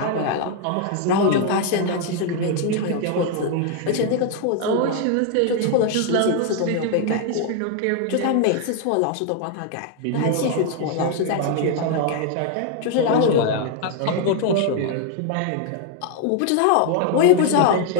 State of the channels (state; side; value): different; both; correlation 0.00